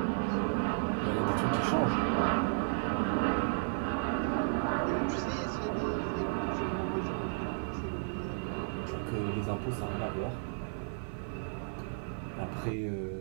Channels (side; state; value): left; silent; digital silence